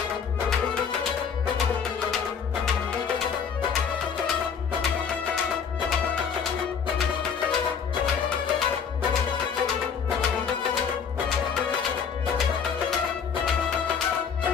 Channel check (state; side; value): quieter; right; 6.8 dB